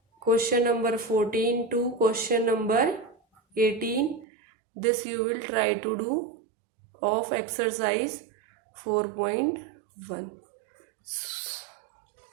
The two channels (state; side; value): drops out; left; at 4.2 s